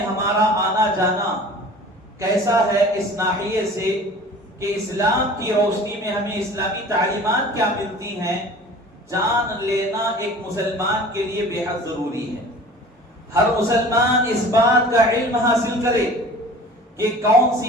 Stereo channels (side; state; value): both; normal; correlation 0.44